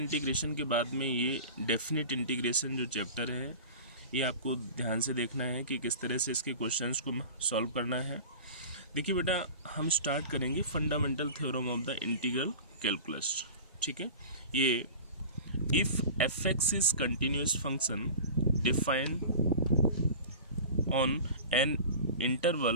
के बाद में ये डेफिनेट इंटीग्रेशन जो चैप्टर है ये आपको ध्यान से देखना है कि किस तरह से इसके क्वेश्चंस को सॉल्व करना है। देखिए बेटा, हम स्टार्ट करेंगे fundamental theorem of the integral calculus. ठीक है, ये if F x is continuous function defined on an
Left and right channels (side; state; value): both; inverted; correlation -0.36